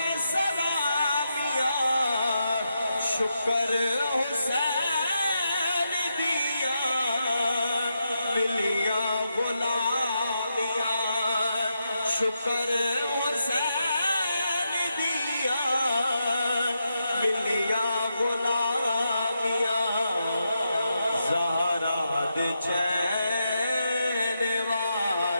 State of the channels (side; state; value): both; inverted; correlation -0.84